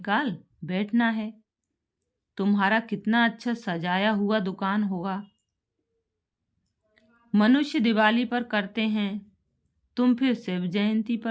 बैठना है। तुम्हारा कितना अच्छा सजाया हुआ दुकान होगा। मनुष्य दिवाली पर करते हैं, तुम फिर शिव जयंती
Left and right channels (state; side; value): identical; both; correlation 1.00